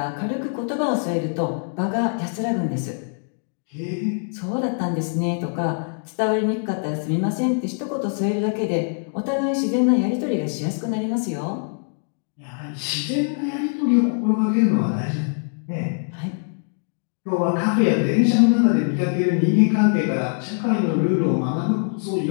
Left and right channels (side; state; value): right; silent; 59 dB below the other